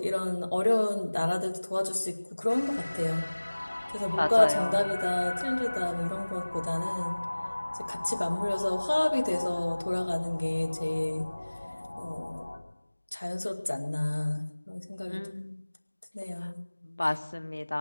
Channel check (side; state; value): both; inverted; correlation -1.00